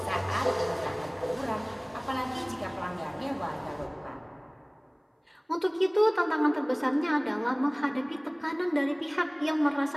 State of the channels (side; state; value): both; identical; correlation 1.00